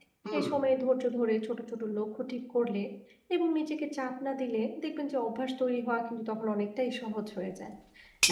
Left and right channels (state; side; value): identical; both; correlation 1.00